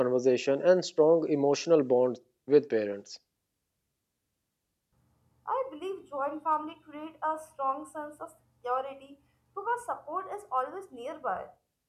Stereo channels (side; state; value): both; identical; correlation 1.00